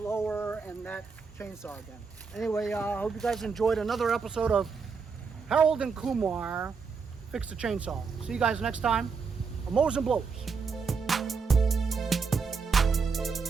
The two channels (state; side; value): quieter; left; 5.3 dB